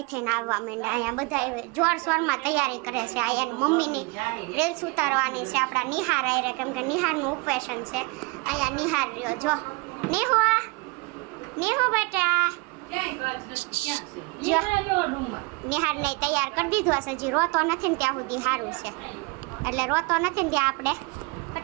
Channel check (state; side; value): quieter; left; 27.1 dB